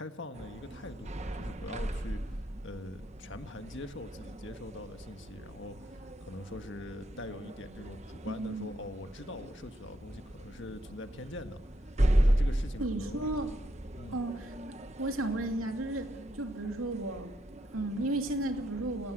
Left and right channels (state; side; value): normal; both; correlation 0.76